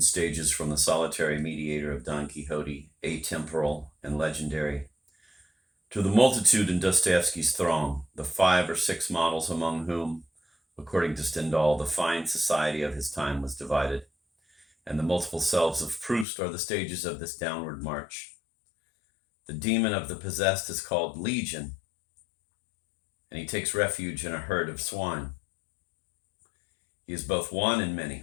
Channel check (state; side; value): drops out; right; at 16.2 s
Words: stages from the solitary mediator of Don Quixote, atemporal and legendary, to the multitude in Dostoevsky's throng, the 5 or 6 models among whom, according to Stendhal, the fine society of his time was divided, and the multiple selves of Proust are the stages of this downward march. The demon of the possessed is called Legion, and he takes refuge in a herd of swine. He is both one and